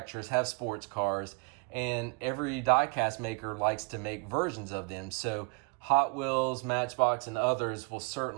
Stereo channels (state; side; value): quieter; left; 30.5 dB